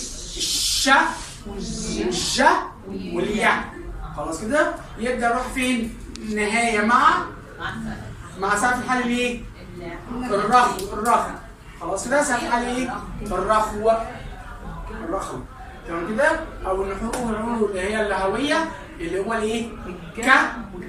والج والياء. خلاص كده؟ يبدا يروح فين؟ نهايه مع سقف الحلق الايه؟ الرخو. خلاص كده؟ سقف الحلق ايه؟ الرخو. تمام كده؟ او النحور اللي هي اللهويه اللي هو الايه؟ ك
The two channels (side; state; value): both; identical; correlation 1.00